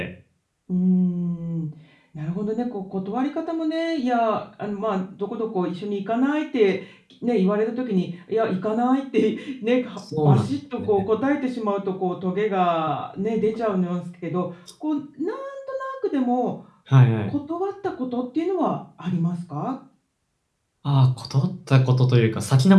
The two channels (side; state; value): both; identical; correlation 1.00